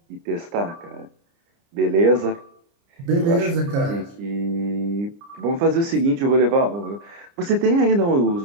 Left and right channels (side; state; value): left; late; 30 ms